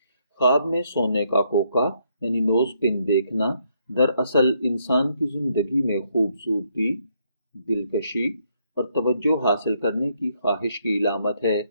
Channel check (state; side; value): inverted; both; correlation -0.73